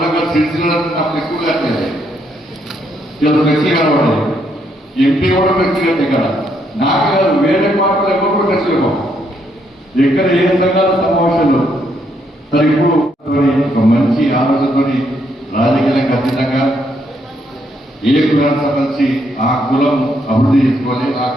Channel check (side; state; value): both; normal; correlation 0.74